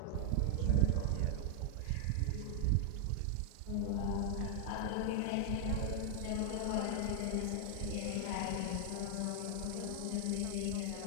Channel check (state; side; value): different; both; correlation -0.01